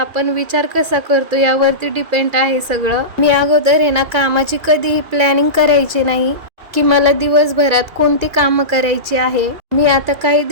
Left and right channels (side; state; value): left; late; 2.4 ms